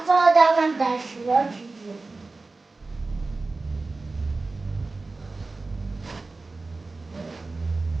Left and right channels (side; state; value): left; quieter; 3.6 dB